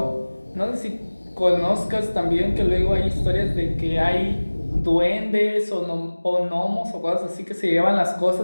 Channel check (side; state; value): both; inverted; correlation -1.00